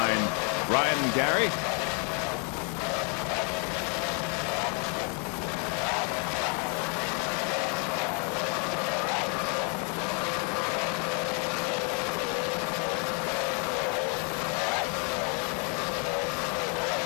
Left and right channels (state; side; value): quieter; right; 37.8 dB